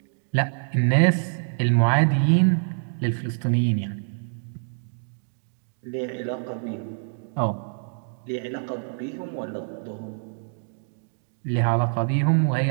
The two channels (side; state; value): left; silent; digital silence